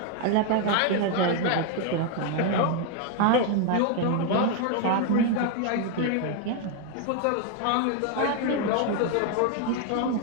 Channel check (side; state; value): both; different; correlation 0.01